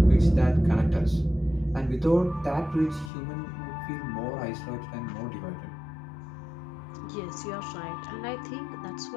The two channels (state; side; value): drops out; right; at 3.1 s